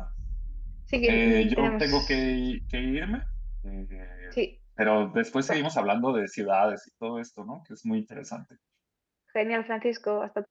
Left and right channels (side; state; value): both; identical; correlation 1.00